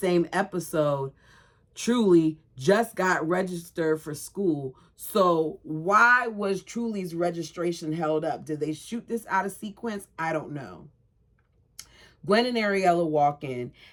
episode, Truly just got registered for school. So why was Truly's registration held up? Did they shoot this out of sequence? I don't know. Gwen and Ariella walk in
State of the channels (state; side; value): identical; both; correlation 1.00